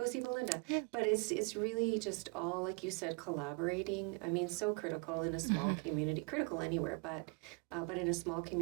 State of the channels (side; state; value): left; quieter; 32.4 dB